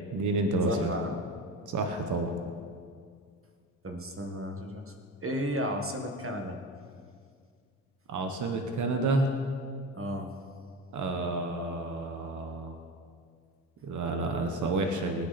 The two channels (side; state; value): both; normal; correlation 0.27